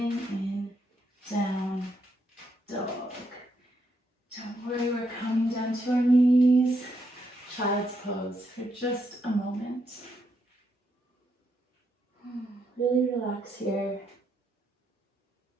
in down dog. Don't worry, we're coming down to our knees. Child's pose for just a moment. Really relax here.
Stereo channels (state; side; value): normal; both; correlation 0.78